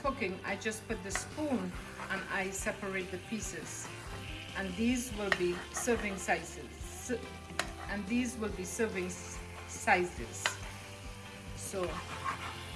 I just put the spoon and I separate the pieces. And these will be serving sizes. So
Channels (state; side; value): identical; both; correlation 1.00